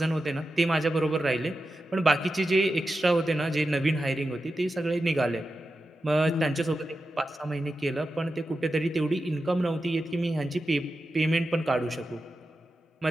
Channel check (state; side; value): normal; both; correlation 0.91